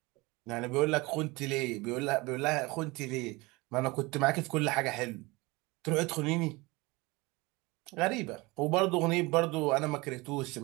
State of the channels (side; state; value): left; quieter; 23.7 dB